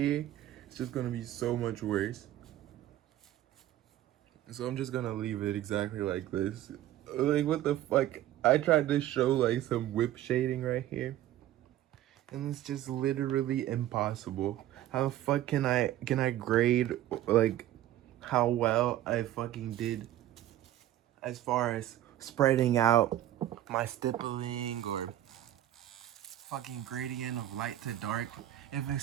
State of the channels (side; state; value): left; quieter; 13.2 dB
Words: it's just gonna be so much worse. So I'm just gonna leave it exactly like this. Like, what the fuck? I tried to show like some whip shading right here, and it's just literally impossible. How the fuck can I grade like how well I fucking did as far as spreading out my stippling or fucking gradient of light to dark if it